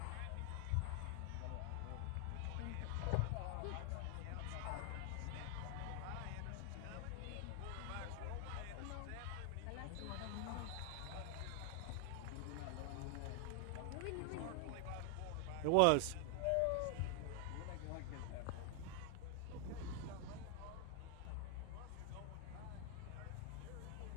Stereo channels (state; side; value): different; both; correlation 0.00